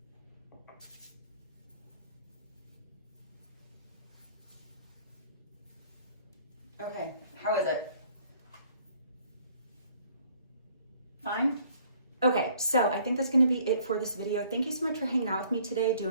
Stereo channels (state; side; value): inverted; both; correlation -0.59